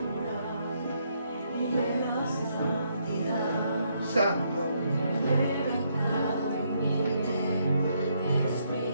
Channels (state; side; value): inverted; both; correlation -0.74